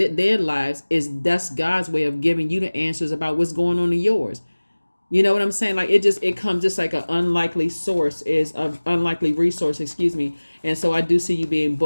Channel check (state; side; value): inverted; both; correlation -1.00